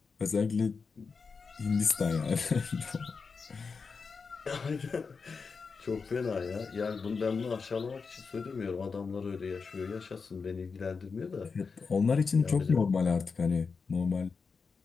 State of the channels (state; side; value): quieter; right; 5.0 dB